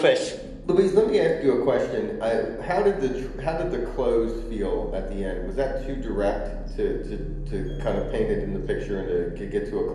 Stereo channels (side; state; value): both; identical; correlation 1.00